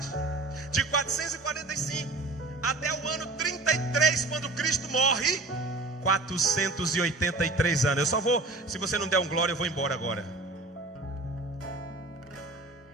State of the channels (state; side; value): quieter; left; 3.1 dB